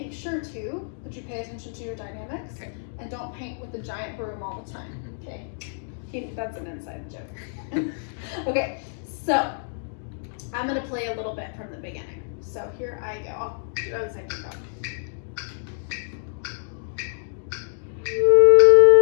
sure too that you pay attention to your dynamics and don't paint with the giant broom all the time, okay? That's an inside joke. Okay, so I'm gonna play a little bit from the beginning. So here I go, I'll do the same thing.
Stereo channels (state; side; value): silent; right; digital silence